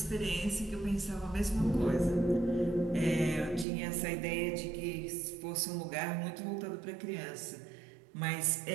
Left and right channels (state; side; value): drops out; left; at 3.7 s